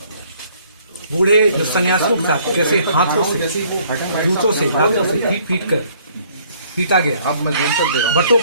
बूढ़े जो सन्यासियों के साथ कैसे हाथों से, जूतों से, दांतों से पीट कर पीटा गया। बटों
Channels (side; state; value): both; inverted; correlation -0.61